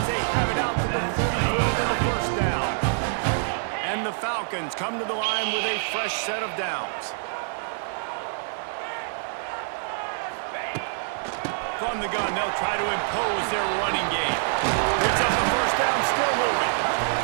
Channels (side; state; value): left; silent; digital silence